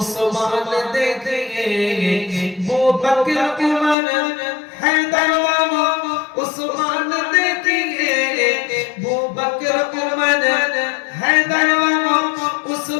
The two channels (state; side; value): drops out; right; at 4.0 s